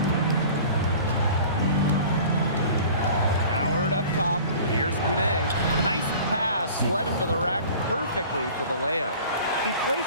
Howard up top. Here's Kune. Nice pass. Led him to the rack perfectly for the layup. He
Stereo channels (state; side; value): inverted; both; correlation -0.44